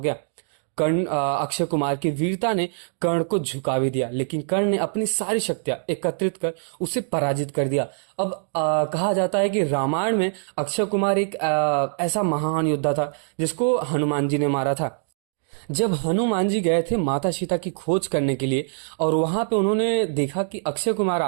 अक्षय कुमार की वीरता ने कर्ण को झुका भी दिया, लेकिन कर्ण ने अपनी सारी शक्तियां एकत्रित कर उसे पराजित कर दिया। अब कहा जाता है कि रामायण में अक्षय कुमार एक ऐसा महान योद्धा था जिसको हनुमान जी ने मारा था। जब हनुमान जी गए थे माता सीता की खोज करने के लिए, और वहां पे उन्होंने देखा कि अक्षय कुमार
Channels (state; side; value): silent; left; digital silence